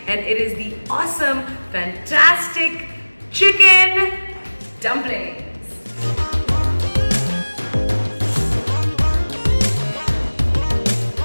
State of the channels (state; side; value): inverted; both; correlation -1.00